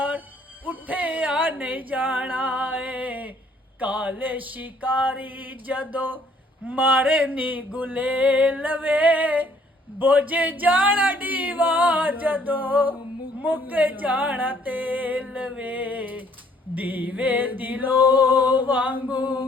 उठे आ नहीं जाना है। काले शिकारी जदो मारे नी गुलेल वे, बोझे जाना दीवा जदो मुक जाना तेल वे। दीवे दिलो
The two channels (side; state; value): both; normal; correlation 0.63